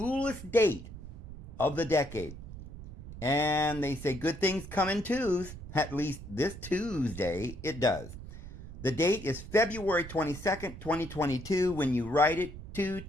date of the decade. And they say good things come in twos. At least this Tuesday it does. The date is February 22nd, 2022. When you write it,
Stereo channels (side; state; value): right; noise; rumble, 12 dB below the sound